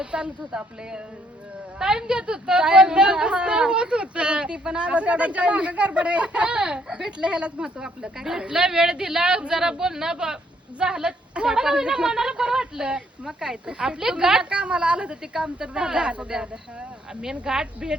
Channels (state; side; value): normal; both; correlation 0.68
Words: चालत होतं आपले टाइम देत होत होत ती पण आता गडबड आहे. भेटलं ह्यालाच महत्व आपलं काय भेटला वेळ दिला जरा बोलणं झालं थोडं का होईना मनाला बरं वाटलं. मग काय तर आपले गाठ कामाला आलं तर ते काम तर झालं. मेन गाठ